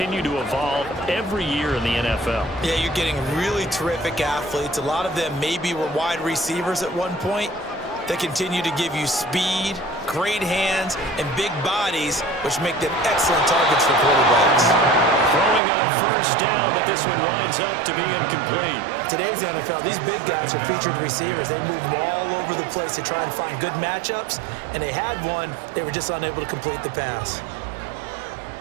to evolve every year in the NFL. Yeah, you're getting really terrific athletes. A lot of them maybe were wide receivers at one point. They continue to give you speed, great hands, and big bodies, which make them excellent targets for quarterbacks. Throwing on 1st down, but this one winds up to be incomplete. Today's NFL, these big guys are featured receivers. They move all over the place to try and find good matchups, and they had one. They were just unable to complete the pass.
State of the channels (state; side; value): drops out; left; at 15.6 s